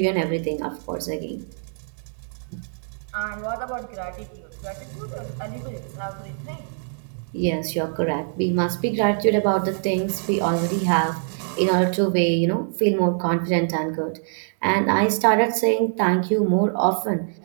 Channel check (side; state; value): left; silent; digital silence